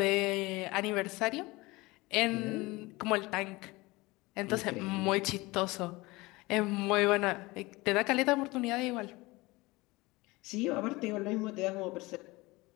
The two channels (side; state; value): right; quieter; 22.1 dB